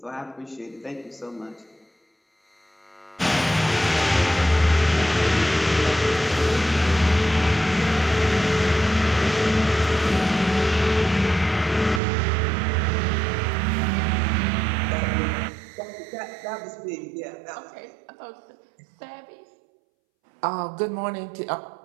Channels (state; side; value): drops out; left; at 12.0 s